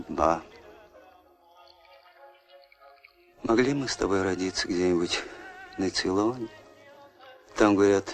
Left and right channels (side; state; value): both; identical; correlation 1.00